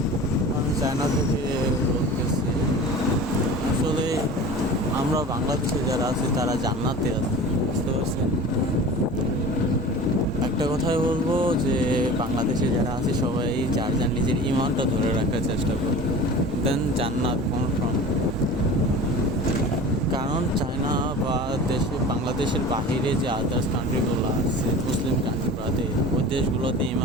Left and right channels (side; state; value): both; normal; correlation 0.37